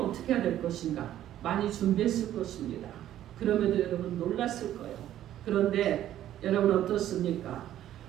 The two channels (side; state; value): left; quieter; 12.2 dB